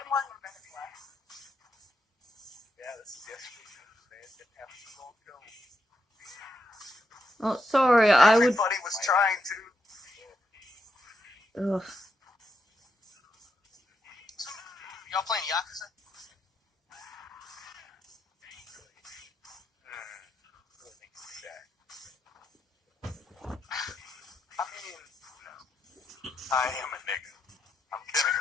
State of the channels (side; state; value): both; normal; correlation 0.81